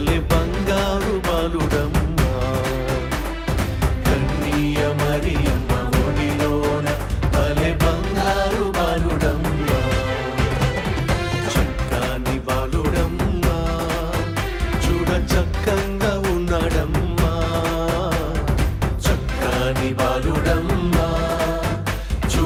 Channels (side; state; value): both; identical; correlation 1.00